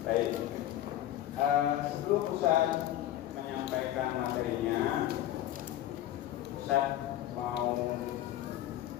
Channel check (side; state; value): right; quieter; 13.0 dB